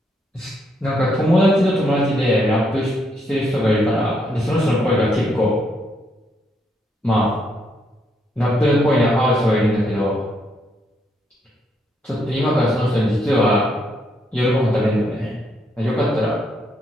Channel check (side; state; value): both; normal; correlation 0.75